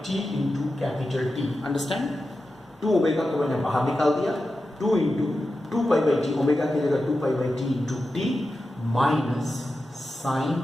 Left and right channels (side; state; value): both; normal; correlation 0.91